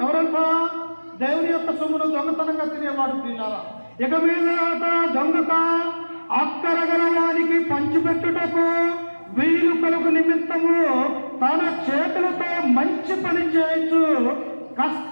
ఎవరంట? దేవుని యొక్క సొమ్మును దొంగతనంగా తినేవాడు. ప్రియులారా, ఇక మీదట దొంగత అక్కరగల వారికి పంచిపెట్టుటకు వీలు కలుగు నిమిత్తము తన చేతులతో మంచి పని చేయొచ్చు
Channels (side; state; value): both; inverted; correlation -1.00